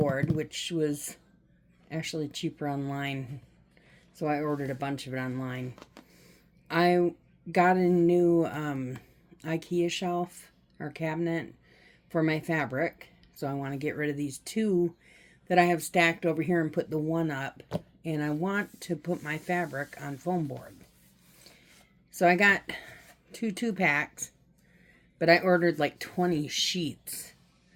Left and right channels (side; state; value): both; identical; correlation 1.00